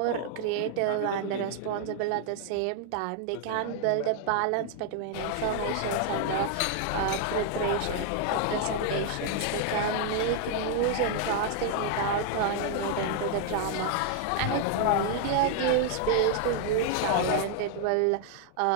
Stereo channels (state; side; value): different; both; correlation 0.00